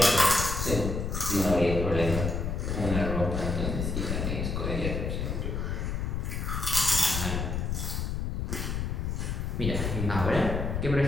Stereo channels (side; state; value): left; noise; rumble, 2 dB below the sound